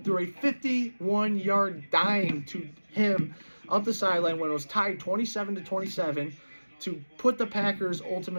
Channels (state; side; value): inverted; both; correlation -1.00